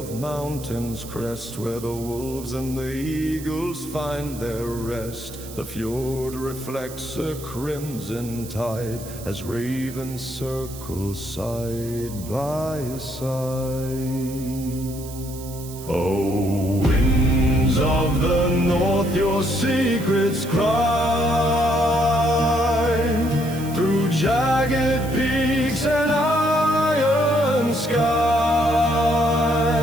mountains crest, where the wolves and the eagles find their rest. The fjord reflects a crimson tide as ravens circle side by side. Oh, winds of the north, your secrets cry through jagged peaks and iron sky.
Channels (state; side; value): noise; right; hiss, 15 dB below the sound